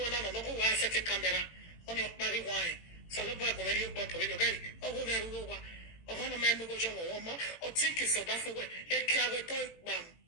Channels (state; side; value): late; right; 18 ms